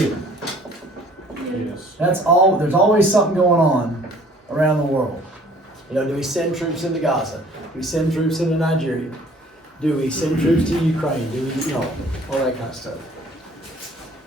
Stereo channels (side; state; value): both; normal; correlation 0.54